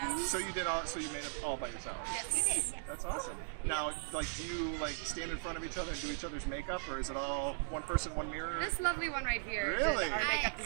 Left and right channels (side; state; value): left; silent; digital silence